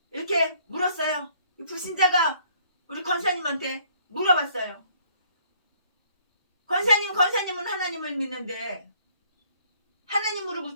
이렇게 물었어요. 불신자가 우리 권사님한테 물어봤어요. 권사님은 하나님을 믿는데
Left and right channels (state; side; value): inverted; both; correlation -0.62